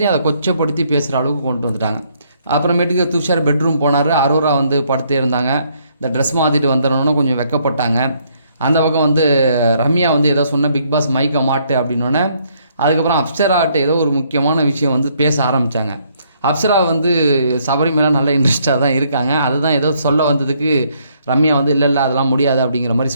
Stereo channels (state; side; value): inverted; both; correlation -0.69